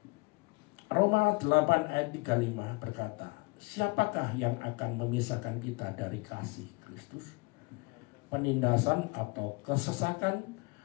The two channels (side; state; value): right; quieter; 26.9 dB